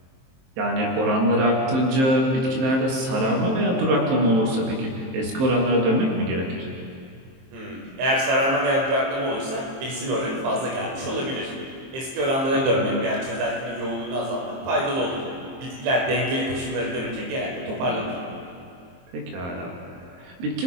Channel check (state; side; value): late; left; 23 ms